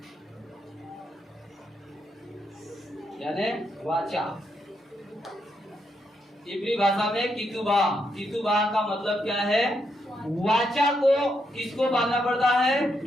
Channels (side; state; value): both; normal; correlation 0.80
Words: यानी वाचा। इब्री भाषा में कितुबाह। कितुबाह का मतलब क्या है? वाचा को किसको बांधना पड़ता है?